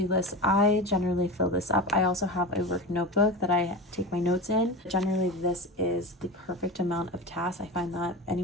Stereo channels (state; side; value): normal; both; correlation 0.27